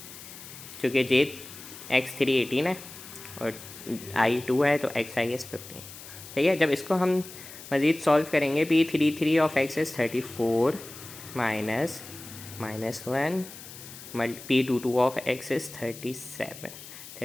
चूँकि x3 18 है और i2 है, तो xi इज़ 15। ठीक है, जब इसको हम मज़ीद सॉल्व करेंगे, P33 of x is 34 minus -1, P22 of x is 37/3।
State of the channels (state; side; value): noise; left; hiss, 15 dB below the sound